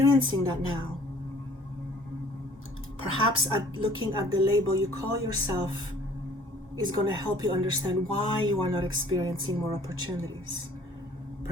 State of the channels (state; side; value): normal; both; correlation 0.54